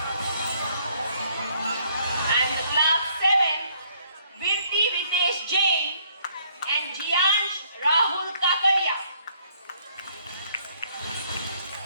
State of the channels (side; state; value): both; inverted; correlation -0.65